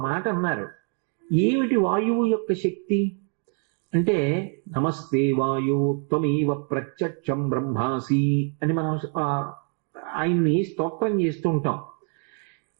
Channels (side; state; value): left; quieter; 38.1 dB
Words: మాట అన్నారు, ఏమిటి వాయువు యొక్క శక్తి అంటే, నమస్తే వాయు త్వమేవ ప్రత్యక్షం బ్రహ్మాసి అని మనం ఆయన్ని స్తోత్రం చేస్తూ ఉంటాం.